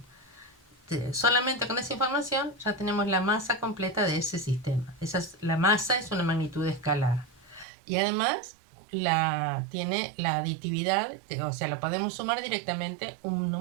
Solamente con esa información ya tenemos la masa completa de ese sistema. La masa es una magnitud escalar. Y además tiene la aditividad, o sea, lo podemos sumar directamente un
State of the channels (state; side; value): drops out; left; at 7.7 s